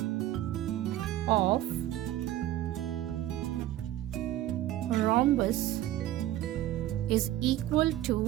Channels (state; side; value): quieter; left; 13.9 dB